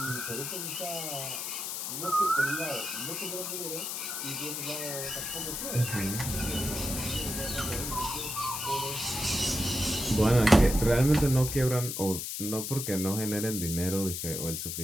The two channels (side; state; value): left; noise; hiss, 4 dB below the sound